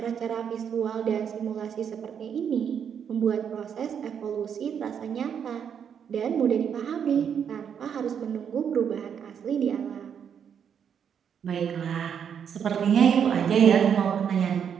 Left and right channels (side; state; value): left; quieter; 7.8 dB